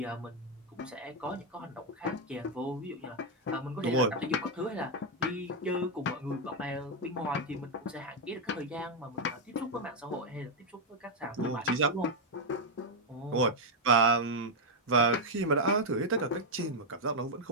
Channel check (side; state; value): both; normal; correlation 0.01